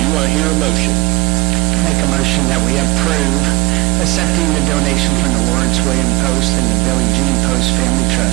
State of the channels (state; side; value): quieter; left; 21.9 dB